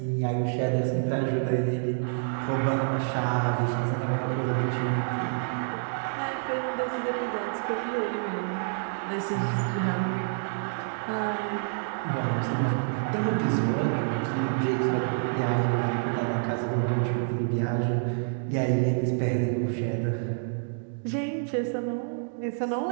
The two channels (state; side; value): silent; left; digital silence